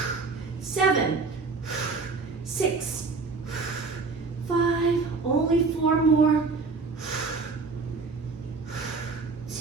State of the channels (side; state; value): left; quieter; 4.2 dB